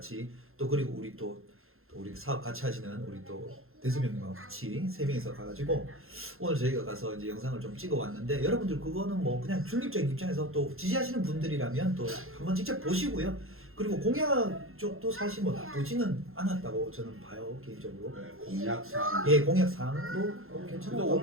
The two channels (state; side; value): late; left; 0.61 ms